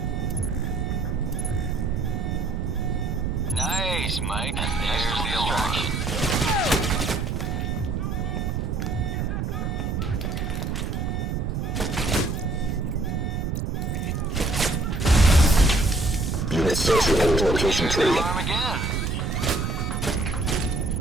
Nice, Mike. And there's the alarm. Unit 6 report to location 3. Alarm again.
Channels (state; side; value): noise; right; rumble, 1 dB below the sound